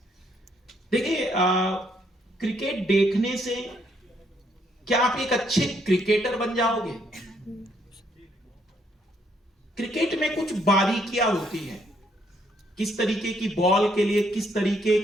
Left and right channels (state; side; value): normal; both; correlation 0.71